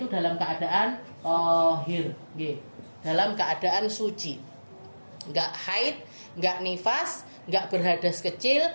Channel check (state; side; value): inverted; both; correlation -1.00